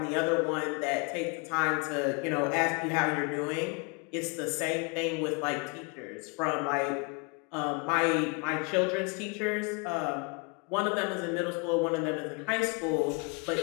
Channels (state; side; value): quieter; right; 32.4 dB